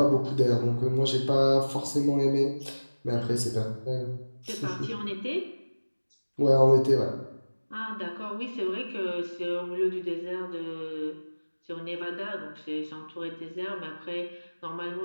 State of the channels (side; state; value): both; inverted; correlation -1.00